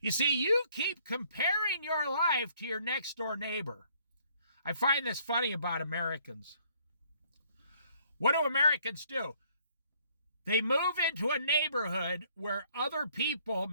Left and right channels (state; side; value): inverted; both; correlation -0.63